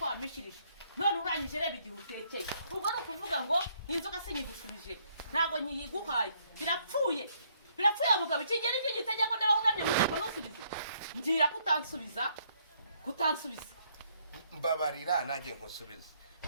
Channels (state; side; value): inverted; both; correlation -0.69